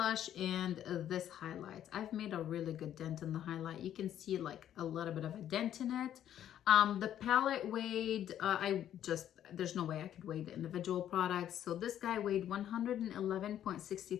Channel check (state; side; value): quieter; right; 10.9 dB